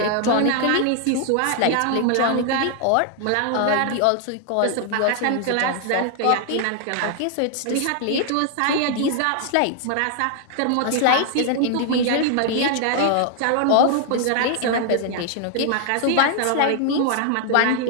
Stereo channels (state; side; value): different; both; correlation 0.00